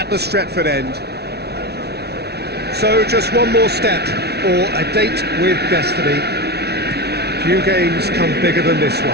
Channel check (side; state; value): left; late; 0.48 ms